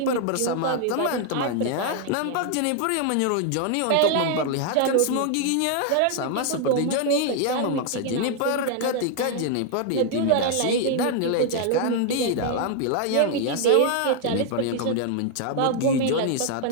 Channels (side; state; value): both; different; correlation 0.00